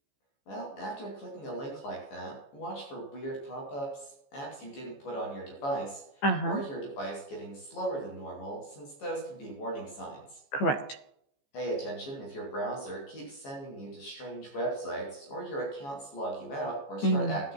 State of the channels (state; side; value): late; right; 14 ms